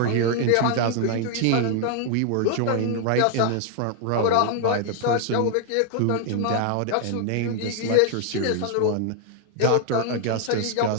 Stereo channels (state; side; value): different; both; correlation 0.00